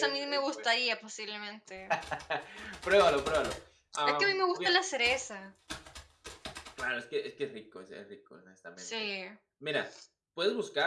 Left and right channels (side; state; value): both; identical; correlation 1.00